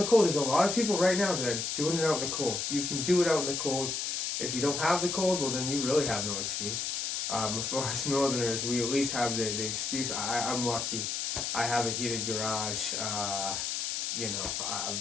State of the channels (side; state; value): left; noise; hiss, 1 dB below the sound